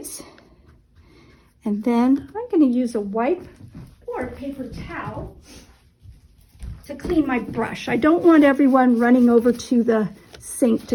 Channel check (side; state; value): both; identical; correlation 1.00